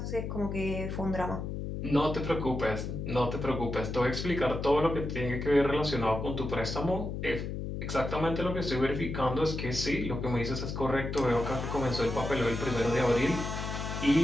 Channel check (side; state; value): left; noise; hum, 5 dB below the sound